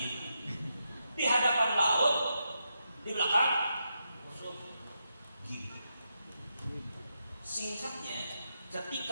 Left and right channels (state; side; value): inverted; both; correlation -0.84